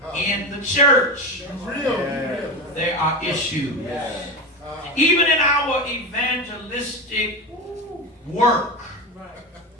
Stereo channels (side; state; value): both; normal; correlation 0.21